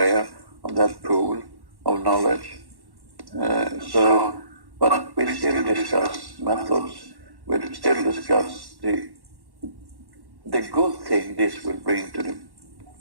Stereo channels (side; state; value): left; late; 1.1 ms